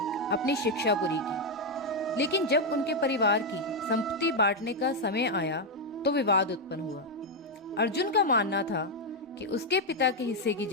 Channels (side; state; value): both; normal; correlation 0.02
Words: अपनी शिक्षा पूरी की, लेकिन जब उनके परिवार की संपत्ति बांटने का समय आया तो विवाद उत्पन्न हुआ। अर्जुन का मानना था कि उसके पिता के हिस्से की